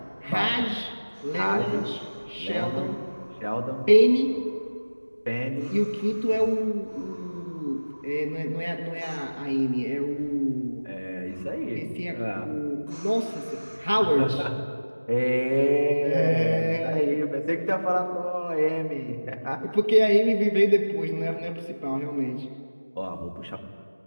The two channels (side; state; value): both; inverted; correlation -1.00